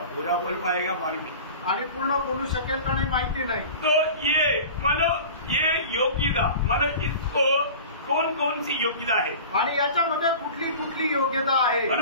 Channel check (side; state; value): both; inverted; correlation -0.37